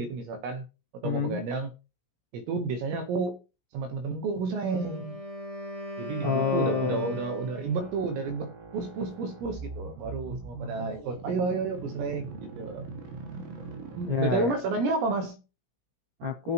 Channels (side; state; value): left; late; 17 ms